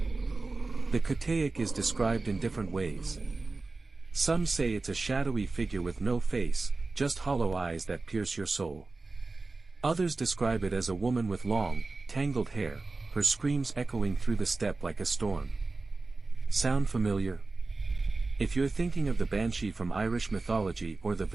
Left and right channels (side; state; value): left; quieter; 3.6 dB